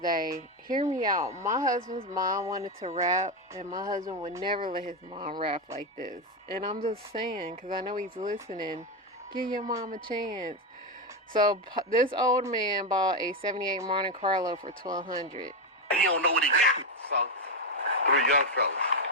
Hear me out. My husband's mom wanted to rap, and my husband would never let his mom rap like this. And I'm just saying, because I know he's listening, give your mom a chance. So this old man bought a '78 Monte Carlo for $1,200. He don't know what he got. So, 3 young fellas.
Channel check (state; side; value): normal; both; correlation 0.09